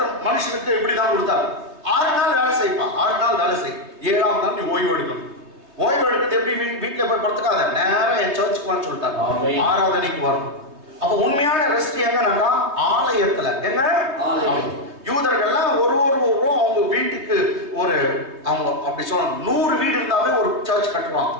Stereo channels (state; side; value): late; left; 3.3 ms